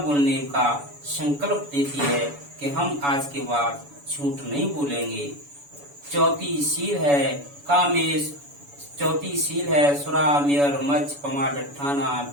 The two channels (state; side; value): late; left; 7.0 ms